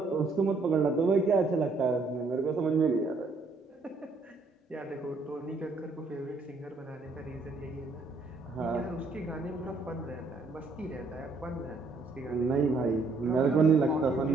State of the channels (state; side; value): quieter; left; 3.8 dB